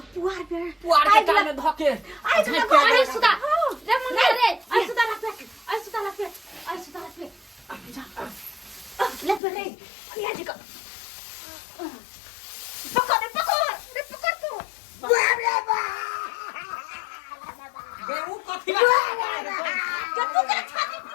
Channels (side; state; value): right; drops out; at 9.4 s